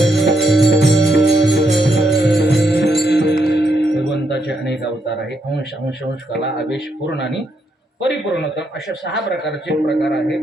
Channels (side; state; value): both; normal; correlation 0.78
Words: भगवंताचे अनेक अवतार आहे. अंश अंश अंश कला आवेश पूर्ण आणि परिपूर्णतम अशा 6 प्रकारचे प्रकार